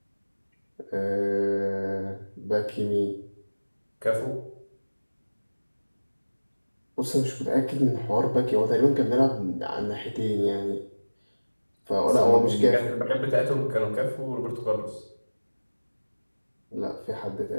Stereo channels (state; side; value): inverted; both; correlation -1.00